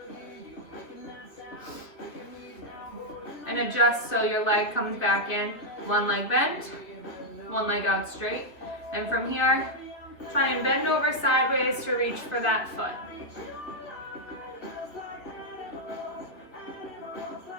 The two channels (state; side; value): late; right; 2.4 ms